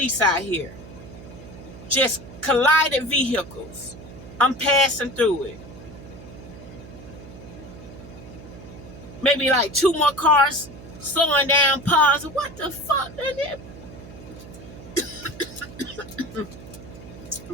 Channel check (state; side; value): noise; right; hum, 16 dB below the sound